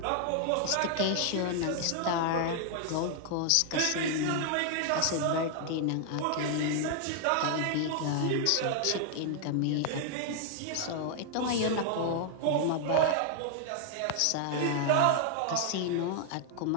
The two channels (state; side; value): different; both; correlation 0.00